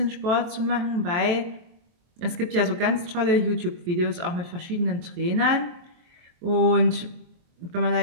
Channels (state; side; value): late; left; 23 ms